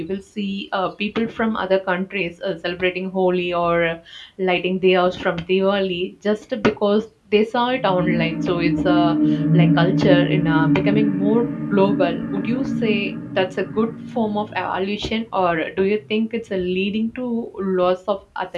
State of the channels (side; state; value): both; identical; correlation 1.00